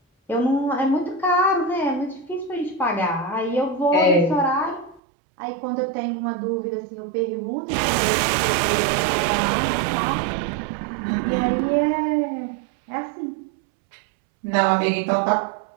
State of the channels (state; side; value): drops out; left; at 5.0 s